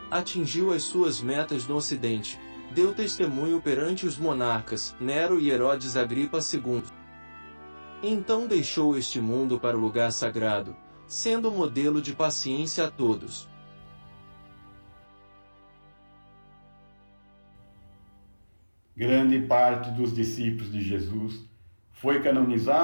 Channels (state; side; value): inverted; both; correlation -1.00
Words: Atingiu as suas metas no Ocidente, deu testemunho perante os monarcas, Nero e Herodes Agripa II. Então deixou este mundo para o lugar sagrado, sendo modelo de paciência a todos. Grande parte dos discípulos de Jesus foi